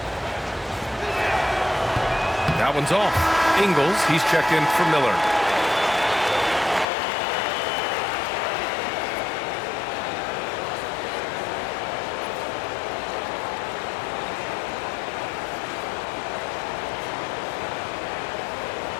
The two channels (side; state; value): right; drops out; at 6.9 s